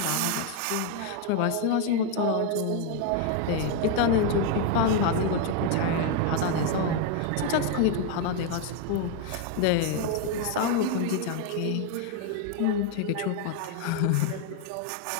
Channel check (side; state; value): both; different; correlation 0.01